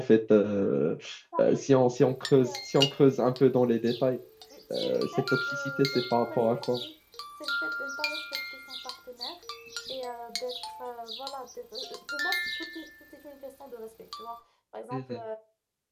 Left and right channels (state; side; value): identical; both; correlation 1.00